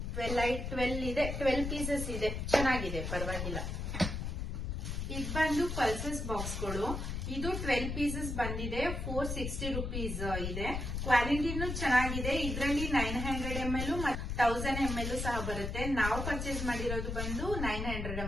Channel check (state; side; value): noise; left; rumble, 3 dB below the sound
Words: 12 ಇದೆ, 12 ಪೀಸಸ್ ಇದೆ, ಚೆನ್ನಾಗಿದೆ, ಪರವಾಗಿಲ್ಲ. ಇದು ಬಂದು ಪಲ್ಸಸ್ ಬಾಕ್ಸ್ಗಳು. ಇದು 12 ಪೀಸಸ್ ಬಂದಿದೆ. 460 rupees ಇದೆ. ಕ್ವಾಲಿಟಿನೂ ಚೆನ್ನಾಗಿದೆ. ಇದರಲ್ಲಿ 900 ml ಮತ್ತು 1000 ml ಸಹ ಬರುತ್ತೆ. ನಾವು ಪರ್ಚೇಸ್ ಮಾಡಿರೋದು ಬಂದು 900